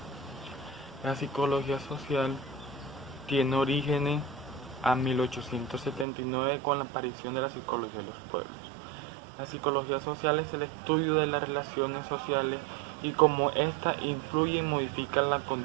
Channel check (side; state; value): left; drops out; at 6.1 s